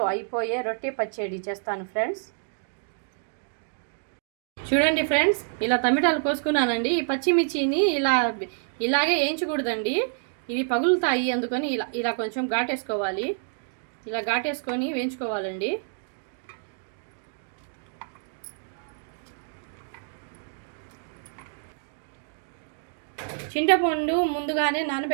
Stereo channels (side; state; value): left; silent; digital silence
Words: అయిపోయే రొట్టె పచ్చడి చేస్తాను ఫ్రెండ్స్. చూడండి ఫ్రెండ్స్, ఇలా టమాటాలు కోసుకున్నానండి. ఈ పచ్చిమిర్చిని ఇలాగే వేయించకూడదండి, ఇవి పగులుతాయి. అందుకని ఇలా కొంచెం ఘాటేసుకోవాలి. ఇలా ఘాటేసుకొని వేయించుకోవాలండి. చింతపండు ముందుగానే